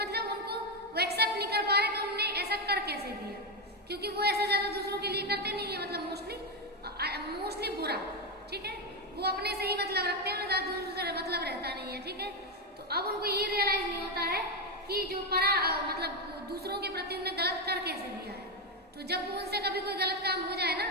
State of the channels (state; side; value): normal; both; correlation 0.08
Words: उनको वो एक्सेप्ट नहीं कर पा रहे कि उनने ऐसा कर कैसे दिया, क्योंकि वो ऐसा ज्यादा दूसरों के लिए करते नहीं है, मतलब मोस्टली बुरा। ठीक है, वो अपने से ही मतलब रखते हैं, ज्यादा दूसरों से मतलब रहता नहीं है। ठीक है, तो अब उनको ये रियलाइज नहीं होता है कि जो मतलब दूसरों के प्रति उन्हें गलत कर कैसे दिया है। तो जब उनसे कभी कोई गलत काम हो जाए ना,